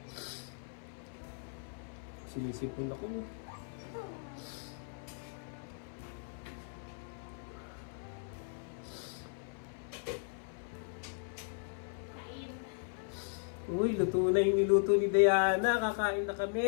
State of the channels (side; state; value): right; silent; 53 dB below the other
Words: sinisipon ako. Uy, luto na yung niluto ni Diana. Kakain na